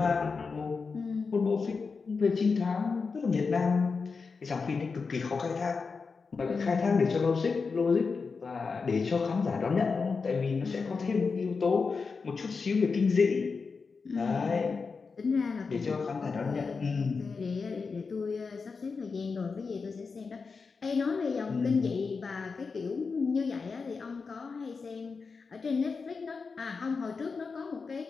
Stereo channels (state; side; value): quieter; right; 4.8 dB